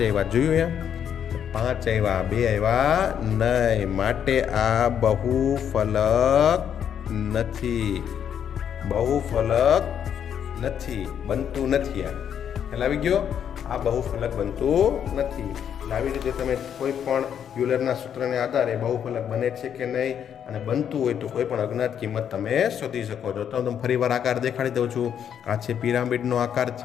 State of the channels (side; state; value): right; quieter; 8.7 dB